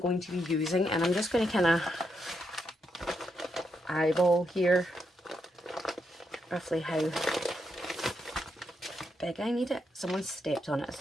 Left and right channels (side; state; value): both; normal; correlation 0.81